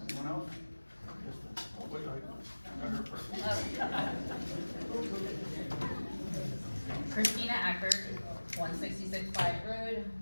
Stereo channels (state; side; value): inverted; both; correlation -1.00